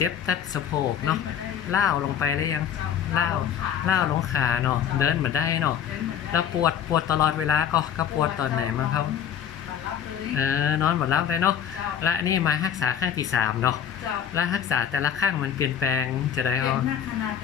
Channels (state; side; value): quieter; right; 8.8 dB